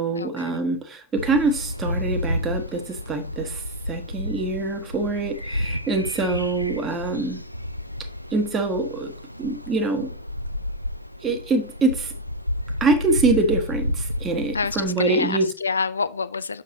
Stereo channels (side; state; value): both; normal; correlation 0.02